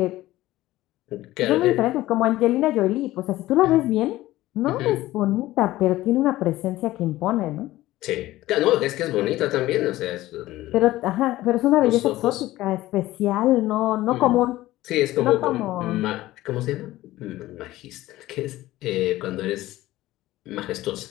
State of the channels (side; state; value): right; quieter; 16.4 dB